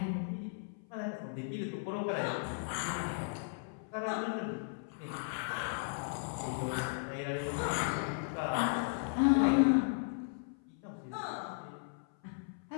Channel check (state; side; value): silent; right; 54 dB below the other